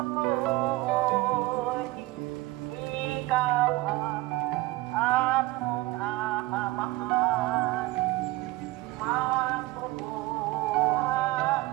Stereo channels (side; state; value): left; quieter; 19.5 dB